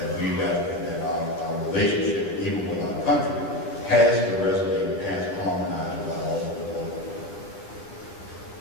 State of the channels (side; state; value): right; late; 9.7 ms